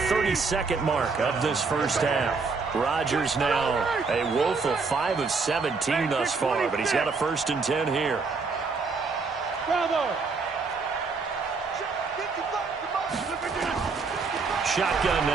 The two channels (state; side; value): quieter; left; 4.5 dB